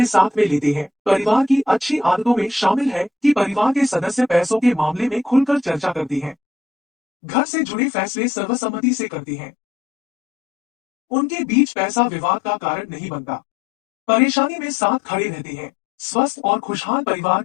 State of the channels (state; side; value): drops out; right; at 6.4 s